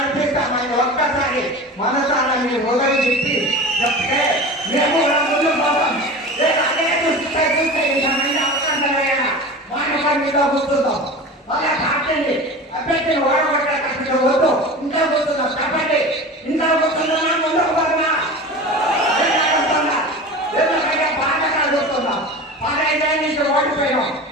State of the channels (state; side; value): normal; both; correlation 0.32